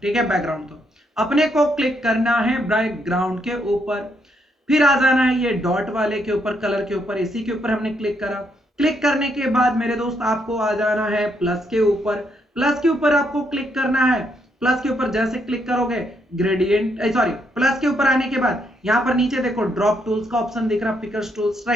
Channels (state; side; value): normal; both; correlation 0.75